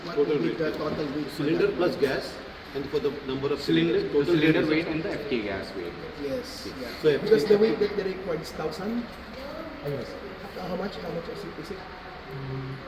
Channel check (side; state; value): both; identical; correlation 1.00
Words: Total would be weight. the total weight? for Cylinder that? plus gas, and for the number of Cylinder, total cylinder is- weight and the FK gas weight. Yes. Yeah. So if- Because the weight that they require is 1,000. Yes. How much? How much is it?